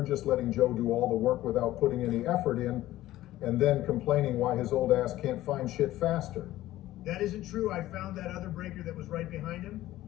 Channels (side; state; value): right; quieter; 15.2 dB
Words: just letting Joe do all the work without putting any effort in and then complaining why his old ass can't find shit faster. That isn't true. I found that other breaker that was right behind him